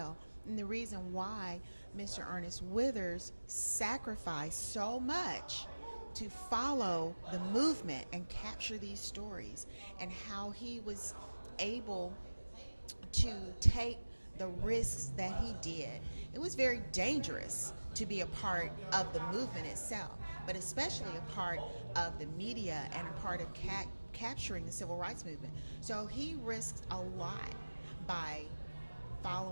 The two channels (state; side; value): inverted; both; correlation -1.00